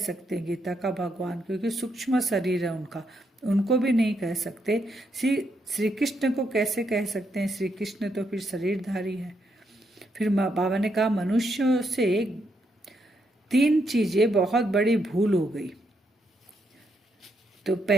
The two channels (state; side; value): normal; both; correlation 0.79